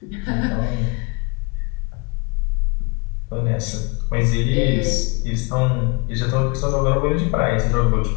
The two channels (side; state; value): right; quieter; 29.9 dB